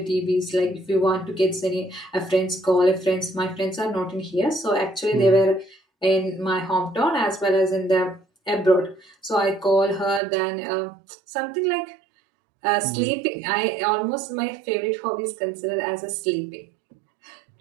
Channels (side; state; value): left; drops out; at 10.2 s